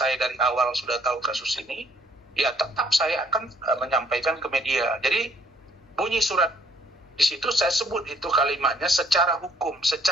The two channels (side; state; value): both; normal; correlation 0.64